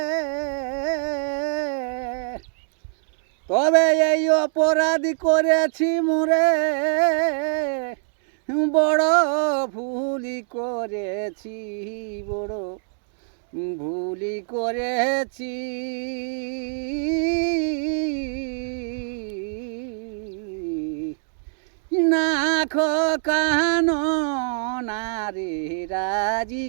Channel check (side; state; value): left; silent; digital silence